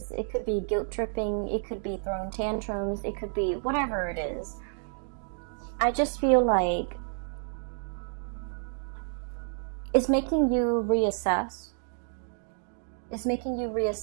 it could be guilt tripping, it could be throwing tantrums, it could be whatever it is. I just feel like it's making you reassess. It's making you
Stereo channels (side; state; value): left; silent; digital silence